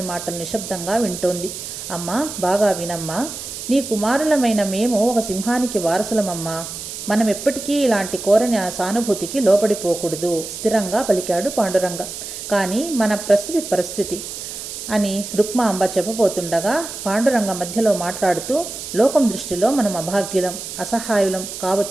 మాటలు నిశ్శబ్దంగా వింటోంది. అమ్మా, బాగా వినమ్మా, నీ కుమారులమైన మేము ఒక సింహానికి వారసులమమ్మా. మనం ఎప్పటికీ ఇలాంటి కోరని సానుభూతికి లోపడిపోకూడదు స్థిరంగా పలికాడు పాండురంగ. కానీ మన పరిస్థితి అని రుక్మాంబ చెప్పబోతుండగా పాండురంగ మధ్యలో మాట్లాడుతూ, లోకం దృష్టిలో మనం అభాగ్యులం, అసహాయులం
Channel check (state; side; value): noise; right; hiss, 9 dB below the sound